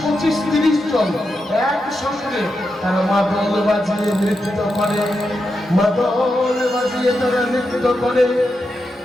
25, 30 জন একসঙ্গে তারা মাদল বাজিয়ে নৃত্য করে, মাদল বাজিয়ে তারা নৃত্য করে।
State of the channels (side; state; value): both; normal; correlation 0.87